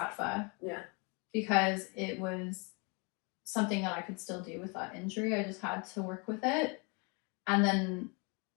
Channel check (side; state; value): right; quieter; 31.9 dB